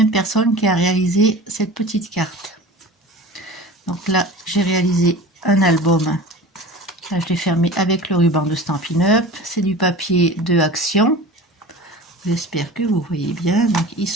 personne qui a réalisé cette petite carte. Donc là, j'ai réalisé un album. Là, je l'ai fermé avec le ruban de Stampin' Up. C'est du papier de Action. J'espère que vous voyez bien. Donc, il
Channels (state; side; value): normal; both; correlation 0.36